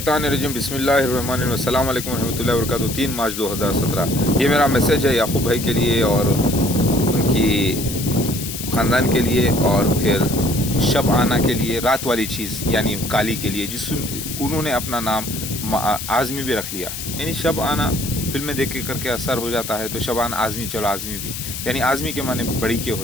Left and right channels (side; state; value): left; noise; hiss, 7 dB below the sound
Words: बिस्मिल्लाहिर्रहमानिर्रहीम अस्सलाम वालेकुम रहमतुल्लाहि व बरकातुहू। 3 मार्च 2017 ये मेरा मैसेज है याकूब भाई के लिए और उनकी ख़ानदान के लिए, और फिर शब आना के लिए, रात वाली चीज़ यानी काली के लिए, जिस उन्होंने अपना नाम आज़मी भी रख लिया। यानी शब आना फिल्में देख के करके असर हो जाता है, तो शबान आज़मी, चलो आज़मी भी, यानी आज़मी के माने बड़ी के